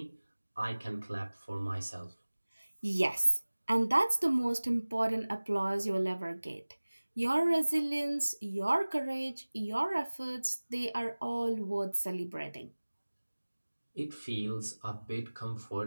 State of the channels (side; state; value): both; inverted; correlation -1.00